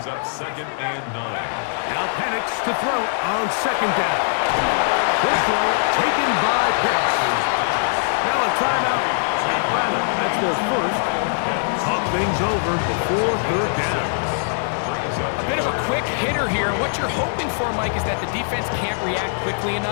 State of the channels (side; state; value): right; silent; digital silence